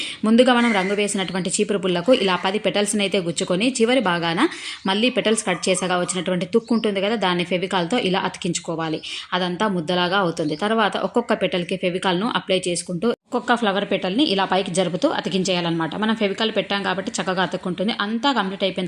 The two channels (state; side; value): identical; both; correlation 1.00